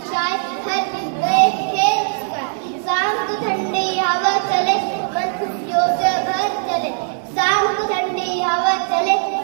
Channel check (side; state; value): left; silent; 64 dB below the other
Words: छाए, हर दिन नए खेल सिखाए। शाम को ठंडी हवा चले, मन खुशियों से भर चले। शाम को ठंडी हवा चले,